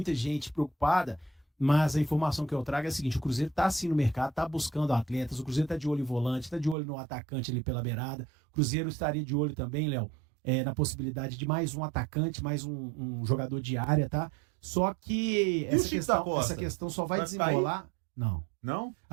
gente preocupada, mas a informação que eu trago é a seguinte: o Cruzeiro está sim no mercado, está buscando atletas, o Cruzeiro está de olho em volante, está de olho no atacante ali pela beirada. O Cruzeiro estaria de olho também, Léo, na possibilidade de mais um atacante, mais um jogador de área, tá? Só que essa questão só vai desenrolar... Não. Não?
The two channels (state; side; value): drops out; left; at 6.8 s